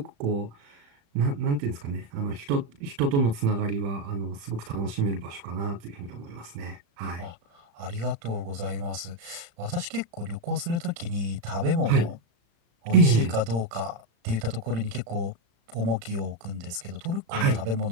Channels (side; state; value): left; late; 35 ms